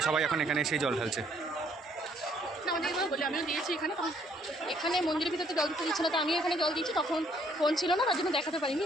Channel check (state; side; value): normal; both; correlation 0.65